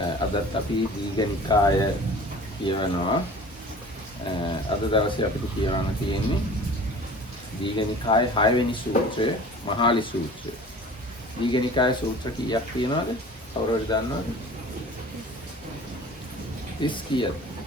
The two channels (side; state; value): both; normal; correlation 0.43